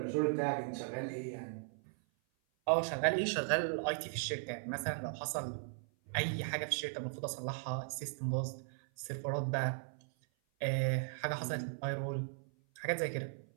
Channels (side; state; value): left; silent; 53 dB below the other